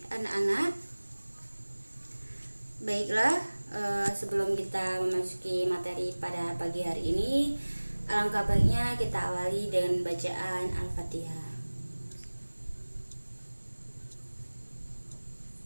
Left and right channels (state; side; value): inverted; both; correlation -1.00